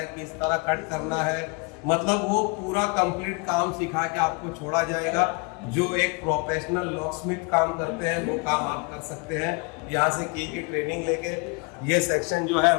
किस तरह कट करना है, मतलब वो पूरा कंप्लीट काम सिखा के आपको छोड़ा जाएगा। जो एक प्रोफेशनल लॉकस्मिथ काम करते हैं वो काम आप कर सकते हैं यहाँ से की ट्रेनिंग लेके। ये सेक्शन जो है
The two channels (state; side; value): quieter; right; 30.5 dB